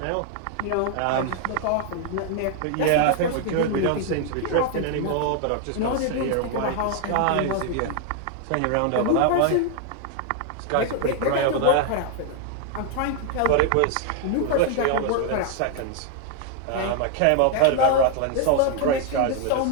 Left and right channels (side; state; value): both; different; correlation 0.00